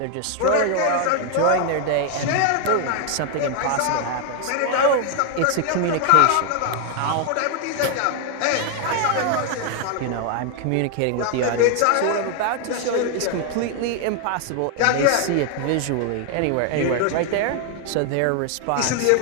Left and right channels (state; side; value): different; both; correlation 0.00